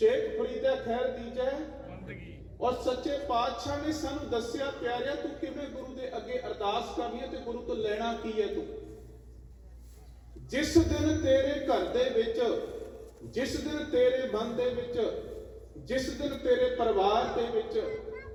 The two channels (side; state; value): both; identical; correlation 1.00